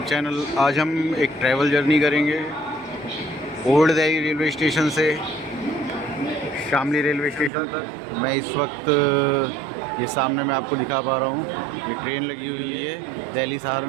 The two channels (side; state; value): left; drops out; at 7.5 s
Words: channel. आज हम एक ट्रैवल जर्नी करेंगे ओल्ड दिल्ली रेलवे स्टेशन से शामली रेलवे स्टेशन तक। मैं इस वक्त ये सामने मैं आपको दिखा पा रहा हूँ, ये ट्रेन लगी हुई है Delhi